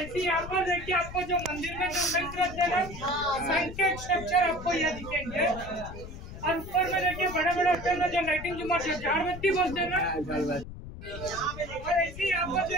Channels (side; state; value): left; noise; rumble, 12 dB below the sound